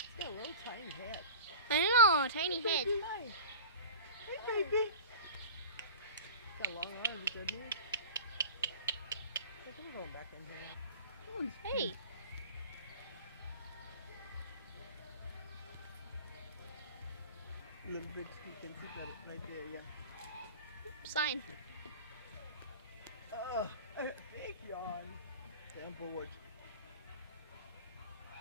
got a little tiny head. I know, tiny head. Hey, baby. Got long arms, doesn't he? I'm going back in here. Hey. A little bit, you can see that right there, yeah. Sign. Oh, big yawn. Down board.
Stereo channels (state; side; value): inverted; both; correlation -0.37